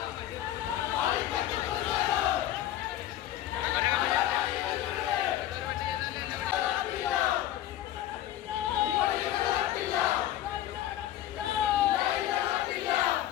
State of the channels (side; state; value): right; quieter; 12.9 dB